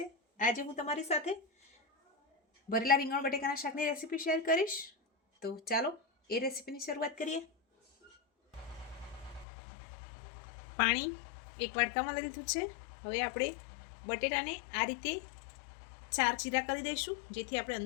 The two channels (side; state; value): right; drops out; at 9.5 s